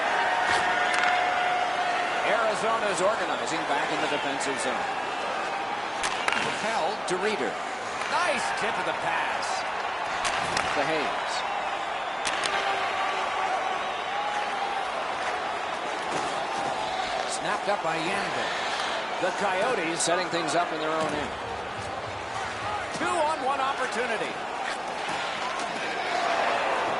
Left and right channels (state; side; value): identical; both; correlation 1.00